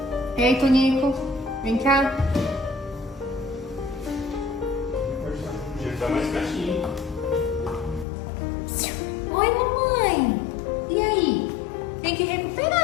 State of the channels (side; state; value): right; drops out; at 8.1 s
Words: Ei, Tonico, vem cá. Tá mais pertinho. Oi, mamãe. E aí? Tem que